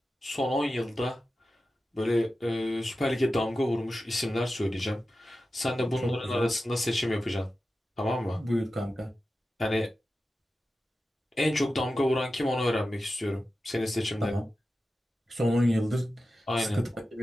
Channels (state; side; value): normal; both; correlation 0.93